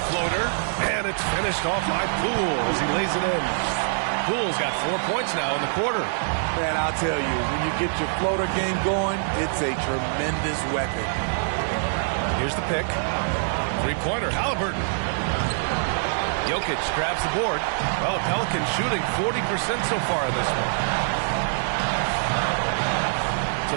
floater, and it's finished off by Poole as he lays it in. Poole's got 4 points now in the quarter. Man, I'll tell you, when you get your floater game going, it's a tremendous weapon. Here's the pick. 3-pointer, Halliburton. Jokic grabs the board. Well, the Pelicans shooting 40% so far in this one. To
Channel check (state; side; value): silent; left; digital silence